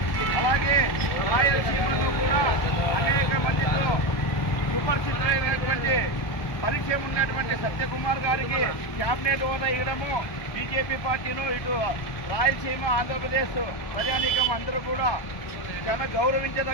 అలాగే రాయలసీమలో కూడా అనేక మందితో సుపరిచితులైనటువంటి పరిచయం ఉన్నటువంటి సత్యకుమార్ గారికి క్యాబినెట్ హోదా ఇవ్వడము బీజేపీ పార్టీలు ఇటు రాయలసీమ, ఆంధ్రప్రదేశ్ ప్రజానీకం అందరూ కూడా చాలా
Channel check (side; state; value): right; late; 1.2 ms